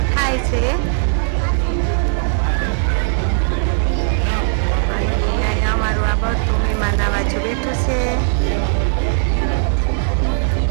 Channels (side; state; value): left; silent; 64 dB below the other